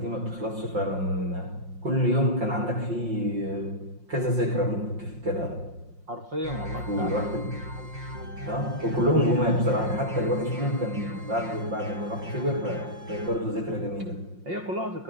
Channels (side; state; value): left; late; 5.6 ms